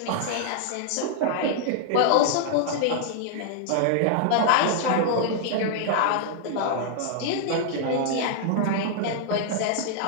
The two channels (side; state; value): both; different; correlation -0.01